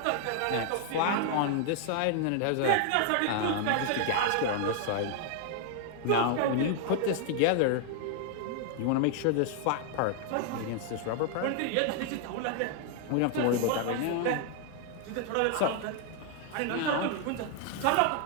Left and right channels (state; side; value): different; both; correlation 0.00